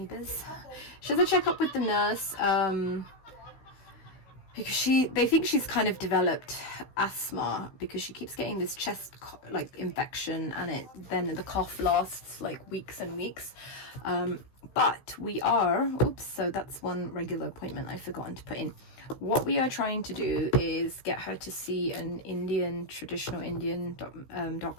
She has a checkup with the nurse, because they think she's kind of developed asthma, because she keeps getting this chest like infection, and then the cough lasts like weeks and weeks. But we are, so that's one regular appointment I've forgotten to put in. What we are trying to do is get her to see an traditional Indian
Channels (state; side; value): late; right; 16 ms